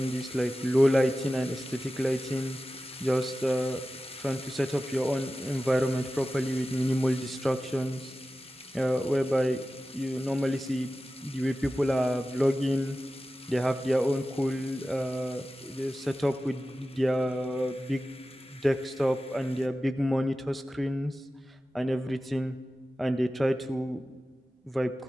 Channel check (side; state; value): both; normal; correlation 0.94